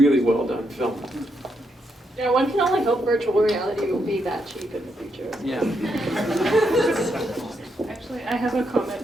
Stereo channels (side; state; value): both; normal; correlation 0.79